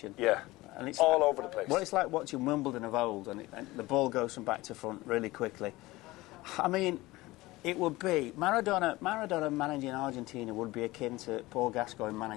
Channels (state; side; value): quieter; right; 19.5 dB